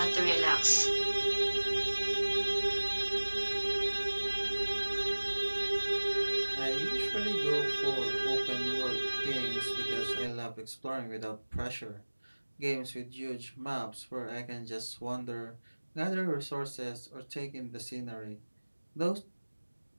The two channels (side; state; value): both; inverted; correlation -1.00